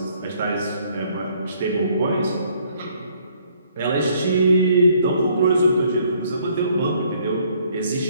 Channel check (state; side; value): inverted; both; correlation -0.65